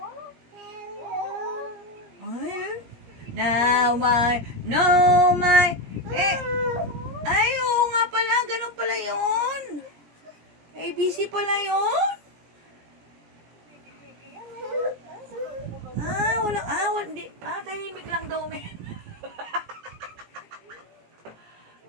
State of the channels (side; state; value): left; late; 17 ms